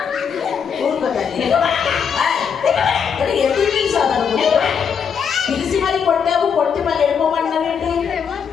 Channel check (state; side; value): quieter; right; 6.9 dB